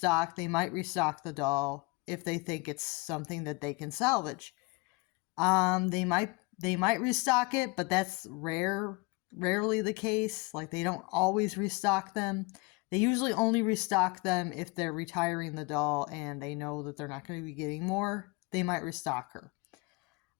They might restock the doll if they think it's something that they can salvage. They might restock it, but that's rarely the case. Like they don't always restock them. They usually only restock them if they're retiring the doll and they know that they're not going to be getting more. They might restock her.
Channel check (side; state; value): right; quieter; 26.3 dB